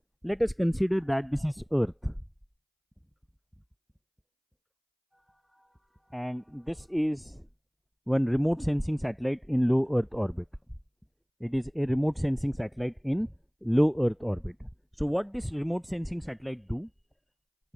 let us consider that this is Earth. and this is one remote sensing satellite in low Earth orbit. It is a remote sensing satellite in low Earth orbit. So what this remote sensing satellite do?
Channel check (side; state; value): both; identical; correlation 1.00